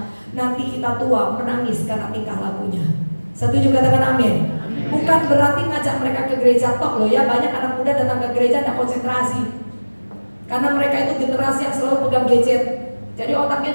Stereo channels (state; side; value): inverted; both; correlation -1.00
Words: nanti kita tua menangis karena tingkah lakunya. Setuju, katakan amin. Bukan berarti ngajak mereka ke gereja tok loh ya. Banyak anak muda datang ke gereja tidak konsentrasi, karena mereka itu generasi yang selalu pegang gadget. Jadi otaknya